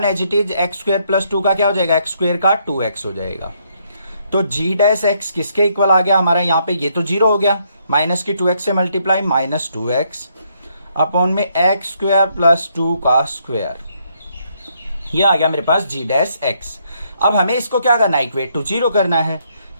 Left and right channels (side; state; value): both; inverted; correlation -0.73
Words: एज इट इज, x² + 2 का क्या हो जाएगा x² का 2x हो जाएगा। तो g'(x) किसके इक्वल आ गया हमारा, यहाँ पे ये तो 0 हो गया, माइनस की 2x से मल्टीप्लाई -2x अपॉन में x² + 2 का स्क्वायर, ये आ गया मेरे पास g'(x). अब हमें इसको क्या करना है, इक्वेट टू 0 करना है,